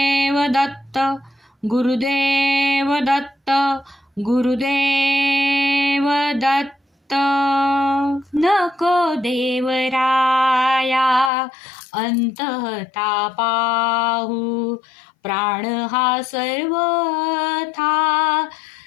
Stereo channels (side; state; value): right; drops out; at 11.3 s